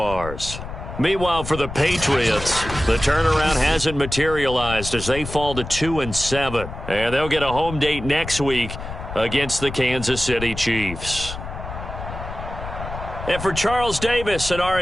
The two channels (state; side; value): noise; left; rumble, 9 dB below the sound